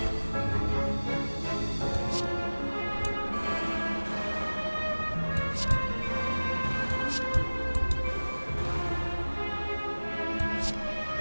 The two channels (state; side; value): inverted; both; correlation -1.00